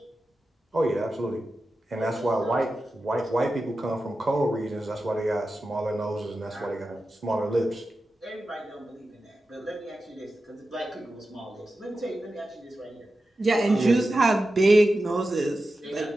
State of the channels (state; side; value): normal; both; correlation 0.92